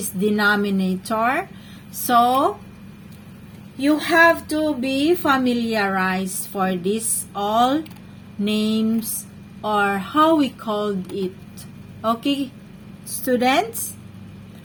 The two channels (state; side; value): identical; both; correlation 1.00